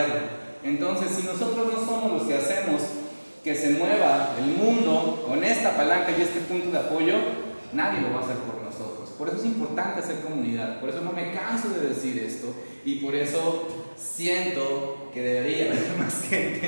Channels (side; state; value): both; inverted; correlation -1.00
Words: Entonces, si nosotros no somos los que hacemos que se mueva el mundo con esta palanca y este punto de apoyo, nadie lo va a hacer por nosotros. Por eso es importante hacer comunidad, por eso no me canso de decir esto y por eso siento que debería haber más gente